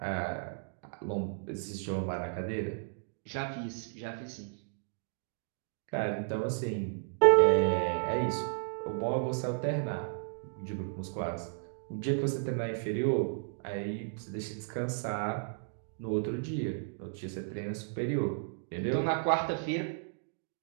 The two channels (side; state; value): left; silent; digital silence